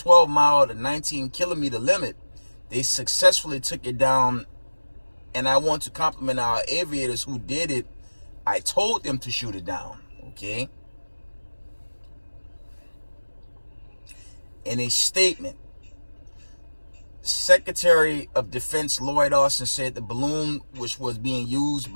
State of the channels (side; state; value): both; inverted; correlation -1.00